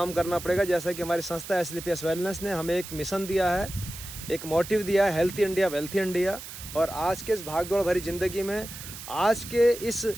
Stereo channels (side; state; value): right; noise; hiss, 12 dB below the sound